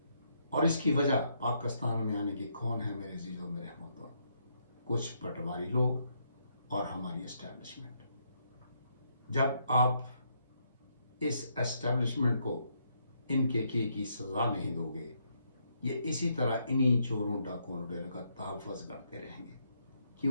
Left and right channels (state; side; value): inverted; both; correlation -0.75